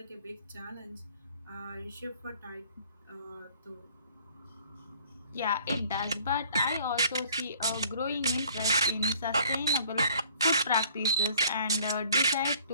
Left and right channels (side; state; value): both; inverted; correlation -0.56